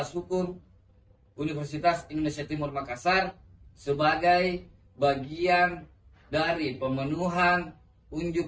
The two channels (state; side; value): identical; both; correlation 1.00